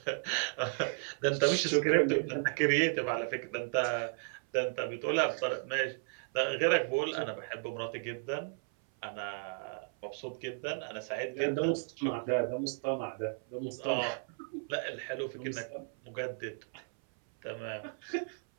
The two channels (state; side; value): silent; left; 55 dB below the other